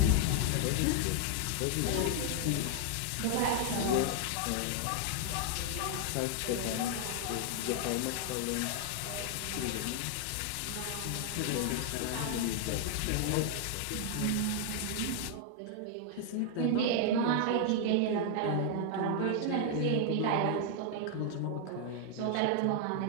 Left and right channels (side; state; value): both; different; correlation 0.00